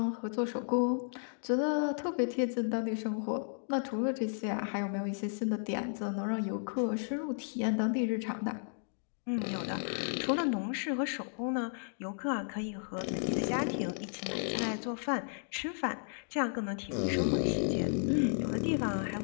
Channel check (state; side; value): silent; right; digital silence